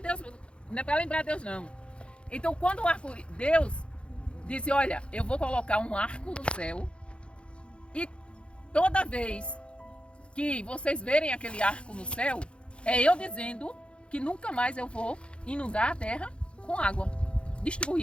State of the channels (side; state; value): right; late; 0.058 ms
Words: não é para lembrar Deus, não. Então, quando Deus disse, olha, eu vou colocar um arco no céu e toda vez que vocês verem aquele arco no céu, é eu dizendo que nunca mais eu vou inundar a terra com água,